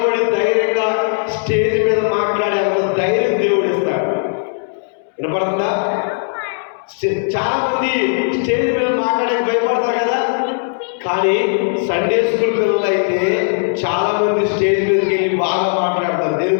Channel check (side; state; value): right; silent; 68 dB below the other